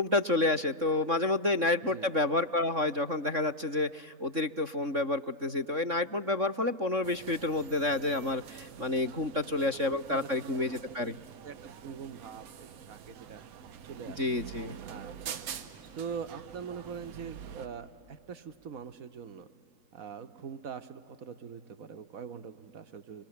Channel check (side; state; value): left; late; 3.6 ms